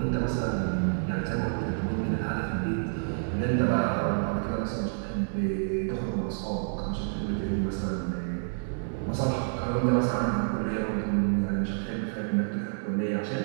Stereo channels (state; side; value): silent; left; digital silence